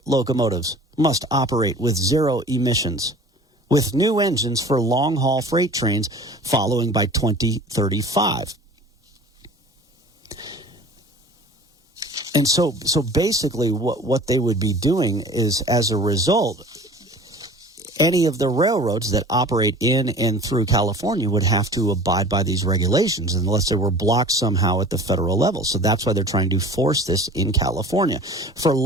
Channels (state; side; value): normal; both; correlation 0.43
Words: locomotives must operate with zero emissions, with new engines for long-haul freight trains following by 2035. And so basically what they would be doing is, as a result, any of the railroads that operate in and through California would have to abide by these regulations unless they were blocked somehow at the federal level. So that's why they're trying to force this in California. For